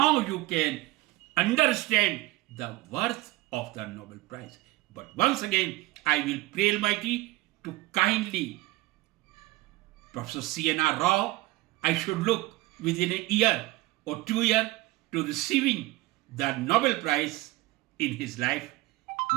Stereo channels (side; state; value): left; quieter; 19.5 dB